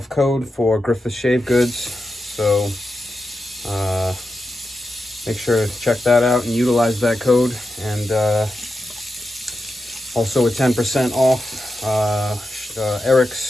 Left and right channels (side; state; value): both; normal; correlation 0.89